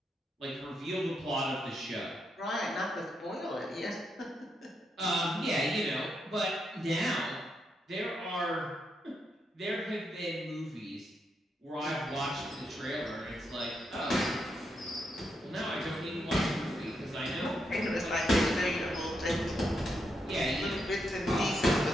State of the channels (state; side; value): normal; both; correlation 0.81